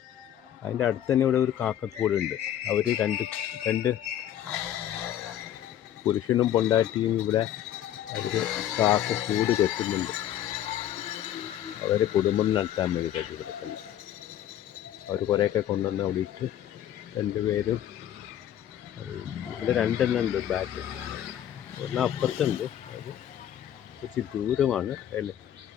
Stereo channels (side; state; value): right; quieter; 11.2 dB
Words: അതിൻ്റെ അടുത്ത് തന്നെ ഇവിടെ ഒരു കാക്കക്കൂടുണ്ട്. അവർ രണ്ട് പുരുഷനും പൊണ്ടാട്ടിയും ഇവിടെ അവർ കാക്കക്കൂട് കെട്ടുന്നുണ്ട്. അവരെ കുടുംബം നടത്താൻ വേണ്ടി കെട്ടി കിടക്കുന്നു. അവർ കുറേയൊക്കെ കൊണ്ടുവന്ന് അവിടെ ഇട്ട് രണ്ടുപേരും ഇവിടെ രണ്ടെണ്ണം ഉണ്ട് ബാറ്റ്. ഒരെണ്ണം അപ്പുറത്തുണ്ട്, അത് കുറച്ച് ദൂരമാണ്.